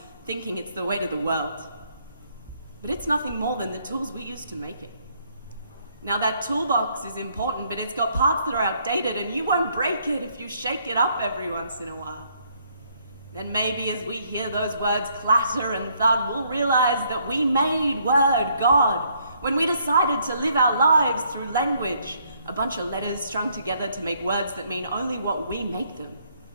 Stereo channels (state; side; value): inverted; both; correlation -0.69